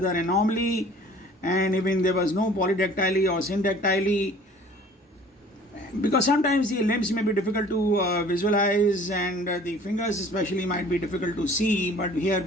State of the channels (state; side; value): normal; both; correlation 0.50